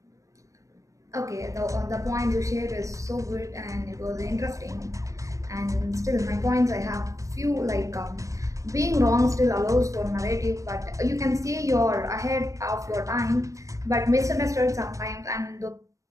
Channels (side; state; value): left; late; 0.16 ms